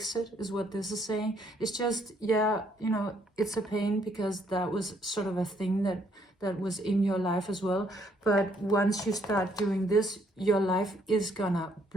it, is what this is saying. It's just, yeah, you know, it's a pain because that was sort of a thing that was in your life as well. But once you start doing this, your life is gonna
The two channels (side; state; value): both; normal; correlation 0.69